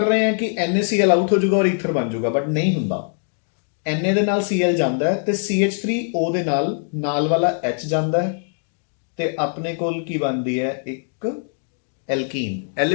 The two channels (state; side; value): silent; right; digital silence